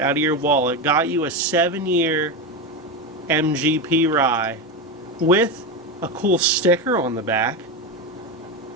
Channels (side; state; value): both; normal; correlation 0.15